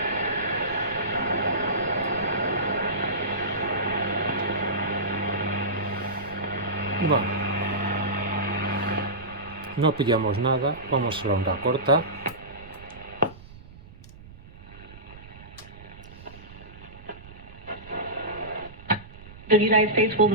Bueno. No pillamos nada, vamos a la onda corta. The United States will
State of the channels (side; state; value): right; noise; rumble, 18 dB below the sound